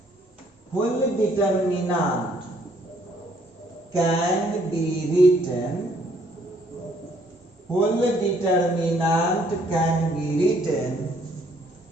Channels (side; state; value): both; normal; correlation 0.65